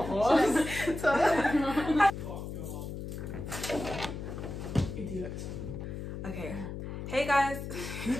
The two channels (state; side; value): noise; left; hum, 7 dB below the sound